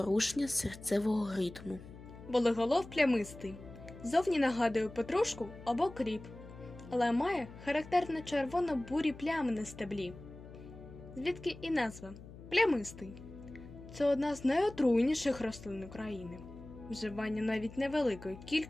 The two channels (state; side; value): noise; left; hum, 16 dB below the sound